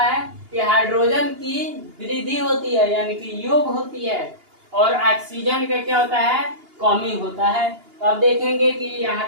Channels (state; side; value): late; left; 2.8 ms